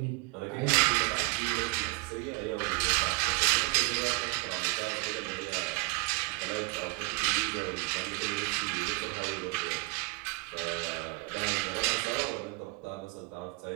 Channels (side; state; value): left; quieter; 26.7 dB